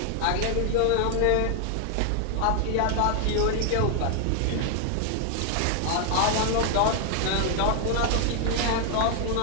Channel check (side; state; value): both; different; correlation 0.00